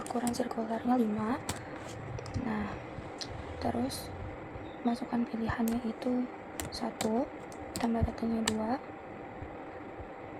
ukuran sirkularnya 5. Nah, terus masukkan pilihannya itu 1 tambah katanya 2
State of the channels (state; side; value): identical; both; correlation 1.00